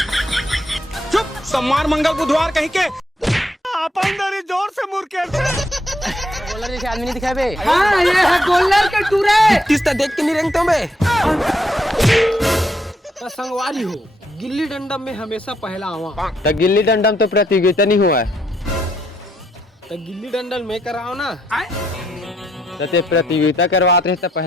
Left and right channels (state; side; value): normal; both; correlation 0.75